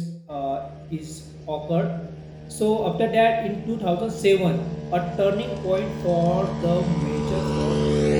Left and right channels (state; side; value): identical; both; correlation 1.00